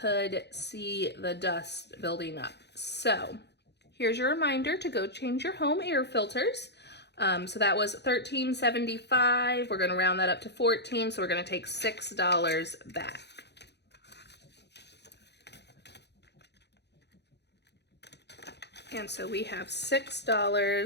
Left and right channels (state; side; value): late; right; 0.49 ms